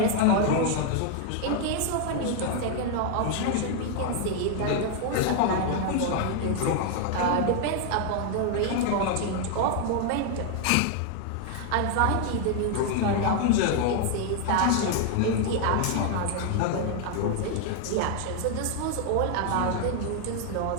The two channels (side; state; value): both; different; correlation 0.00